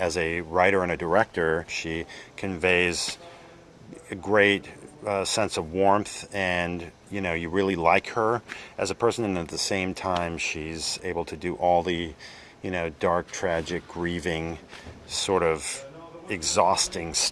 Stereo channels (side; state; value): both; identical; correlation 1.00